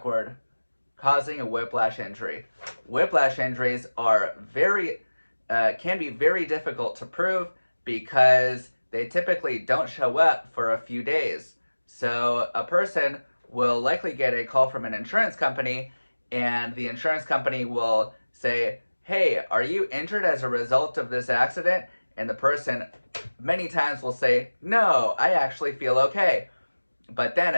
causing a whiplash injury. Whiplash injuries are can be very difficult to prove because they typically don't show up for a few days. So a person will likely get a call from an insurance company, and the insurance company will say, "Hey, are you injured as a result of this accident?" And the person many times will say, "No, I actually feel okay." But then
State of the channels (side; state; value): both; inverted; correlation -1.00